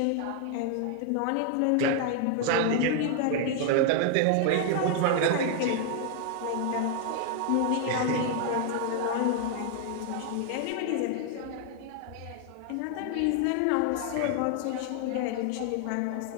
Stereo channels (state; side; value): different; both; correlation 0.00